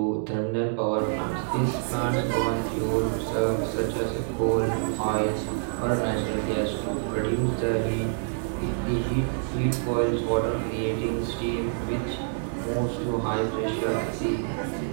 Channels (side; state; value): left; silent; digital silence